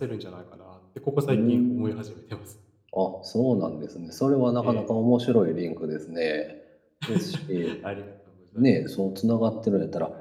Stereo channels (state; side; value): identical; both; correlation 1.00